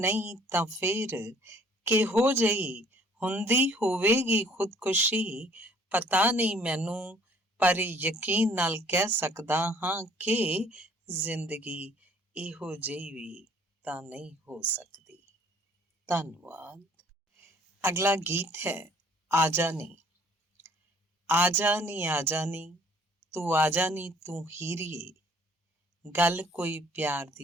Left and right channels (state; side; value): normal; both; correlation 0.57